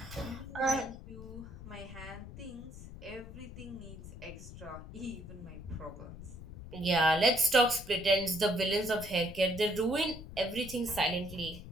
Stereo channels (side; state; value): left; noise; rumble, 13 dB below the sound